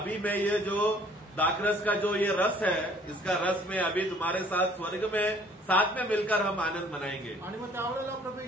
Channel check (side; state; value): both; normal; correlation 0.56